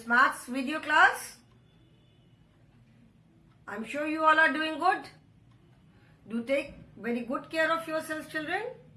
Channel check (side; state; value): both; identical; correlation 1.00